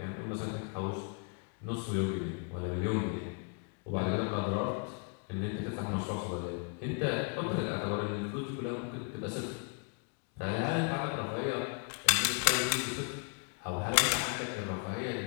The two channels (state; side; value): quieter; right; 38.0 dB